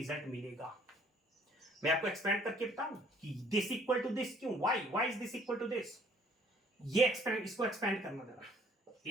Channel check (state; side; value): normal; both; correlation 0.59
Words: मिलेगा। मैं आपको एक्सपेंड करके बताऊं कि दिस इक्वल टू दिस क्यों, why is this equal to this, ये एक्सपेंड, इसको एक्सपेंड करना जरा,